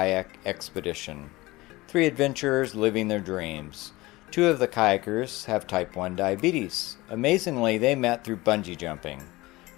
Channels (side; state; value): right; quieter; 20.4 dB